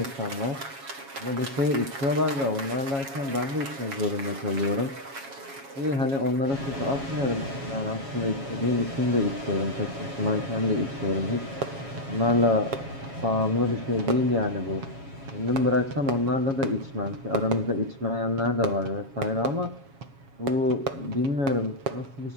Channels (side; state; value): left; late; 7.3 ms